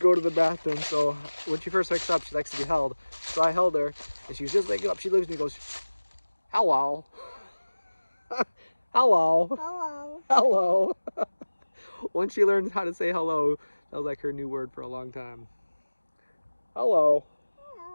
to the bathroom, so when she first wakes up, she likes to be held. So I held her, and she was just waking up. She looks at me and goes, hello. Hello. Hello. Hello. Once she learned how to say hello, that was like her new word for a long time. Hello.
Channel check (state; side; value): inverted; both; correlation -1.00